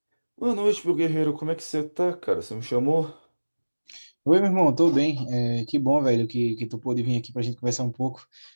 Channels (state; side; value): inverted; both; correlation -1.00